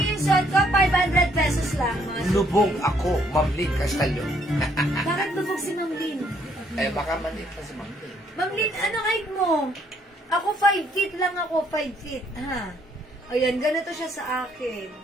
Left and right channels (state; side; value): normal; both; correlation 0.68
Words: yung suot ko, 500 pesos lang. Mga suki. Lubog ako, Ma'am Lynn Castallo. Bakit lubog si Ma'am Lynn? Eh, baka maliit pa si Ma'am Lynn. Ma'am Lynn, ano height mo? Ako 5 feet lang ako, 5 feet. Ha? Ayan, ganito siya sa akin.